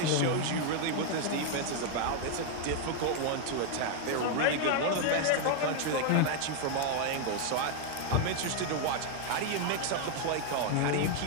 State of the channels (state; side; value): different; both; correlation 0.00